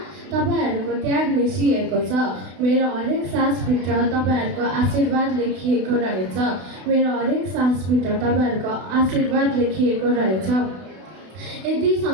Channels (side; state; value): left; late; 32 ms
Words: तपाईँहरूको त्याग मिसिएको छ, मेरो हरेक सासभित्र तपाईँहरूको आशीर्वाद लेखिएको रहेछ, मेरो हरेक सासभित्र तपाईँहरूको आशीर्वाद लेखिएको रहेछ। यदि